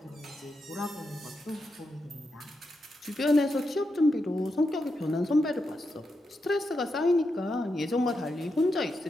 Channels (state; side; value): normal; both; correlation 0.86